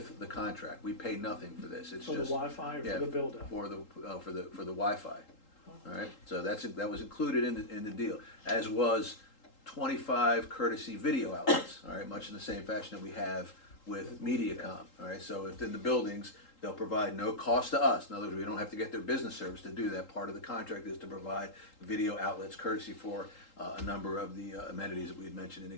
the contract. We pay nothing for this. It's For the just Wi-Fi or yeah, for the build out? for the Wi-Fi. All right, so that was included in the deal, as was 25 courtesy video outlets. All right, much in the same fashion that we have with MediaCom. All right, so within the buildings, they'll provide no cost to us. In other words, we don't have to get their business service to do that. Part of the contract is to provide video outlets courtesy for a number of the amenities that we had mentioned in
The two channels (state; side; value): late; right; 3.8 ms